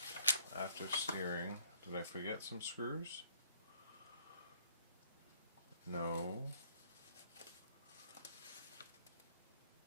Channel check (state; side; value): inverted; both; correlation -0.62